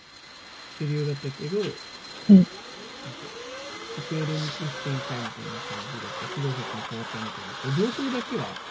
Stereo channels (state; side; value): identical; both; correlation 1.00